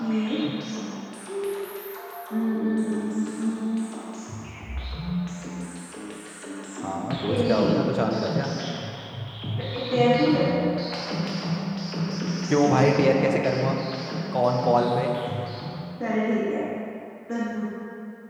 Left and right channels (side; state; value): both; identical; correlation 1.00